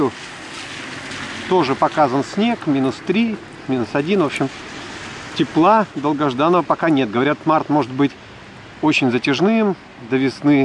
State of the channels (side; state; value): both; identical; correlation 1.00